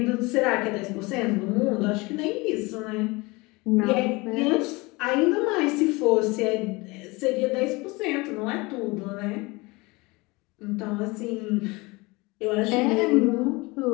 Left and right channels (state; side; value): quieter; right; 24.3 dB